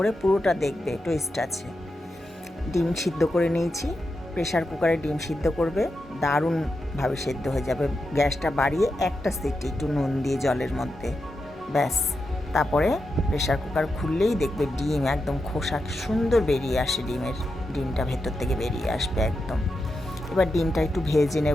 পুরোটা দেখবে, টুইস্ট আছে। ডিম সিদ্ধ করে নিয়েছি, প্রেশার কুকারে ডিম সিদ্ধ করবে, দারুণভাবে সেদ্ধ হয়ে যাবে। গ্যাসটা বাড়িয়ে একটা সিটি একটু নুন দিয়ে জলের মধ্যে, ব্যাস। তারপরে প্রেশার কুকার খুললেই দেখবে ডিম একদম খোসা সুন্দর বেরিয়ে আসে, ডিমটা ভেতর থেকে বেরিয়ে আসবে একদম। এবার ডিমটা একটু ভেজে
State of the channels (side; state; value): both; normal; correlation 0.88